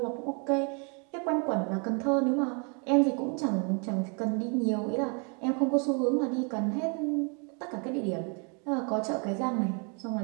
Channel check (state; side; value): quieter; left; 36.3 dB